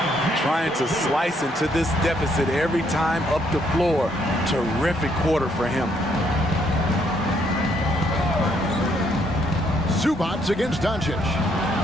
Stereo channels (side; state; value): both; normal; correlation 0.71